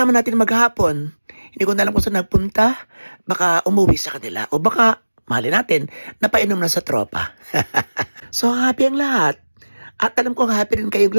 natin maghapon. Hindi ko na alam kung saan nagpunta. Baka umuwi sa kanila. O baka, mahali natin, napainom na sa tropa. So happy ang lahat. At alam kong happy rin kayong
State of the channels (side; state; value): both; inverted; correlation -1.00